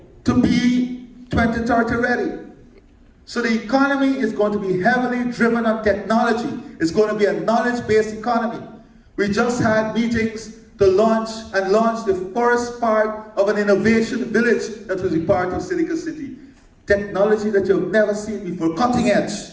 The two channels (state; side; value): identical; both; correlation 1.00